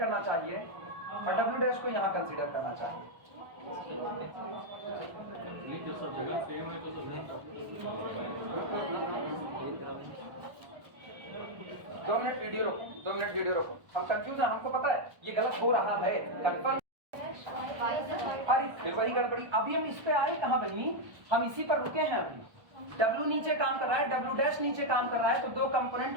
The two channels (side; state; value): left; late; 1.1 ms